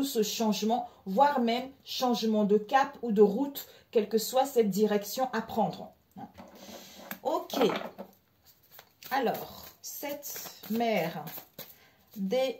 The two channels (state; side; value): identical; both; correlation 1.00